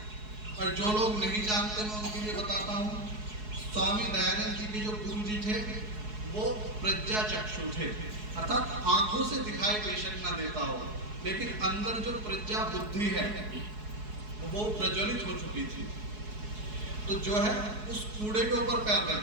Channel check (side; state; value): left; late; 4.7 ms